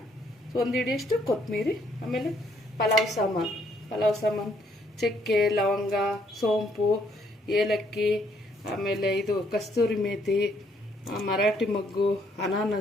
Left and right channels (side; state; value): both; normal; correlation 0.69